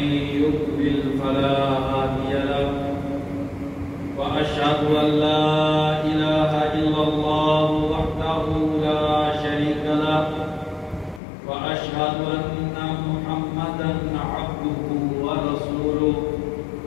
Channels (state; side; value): drops out; right; at 11.2 s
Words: يضلل فلا هادي له وأشهد أن لا إله إلا الله وحده لا شريك له وأشهد أن محمدا عبده ورسوله